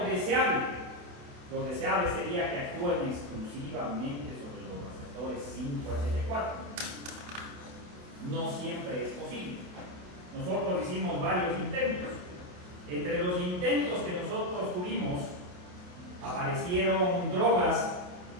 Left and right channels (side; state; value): left; late; 28 ms